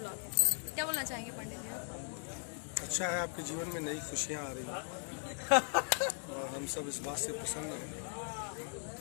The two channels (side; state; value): right; silent; 52 dB below the other